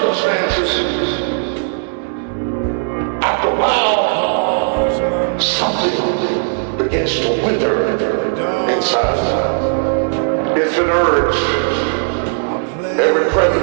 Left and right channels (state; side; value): silent; left; 68 dB below the other